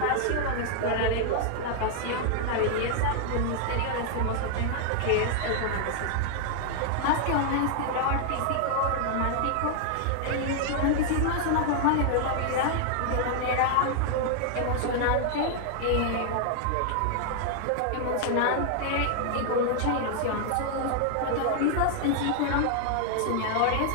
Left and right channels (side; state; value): both; different; correlation 0.00